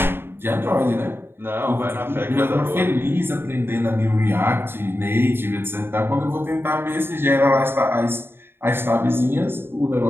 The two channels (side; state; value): left; late; 0.11 ms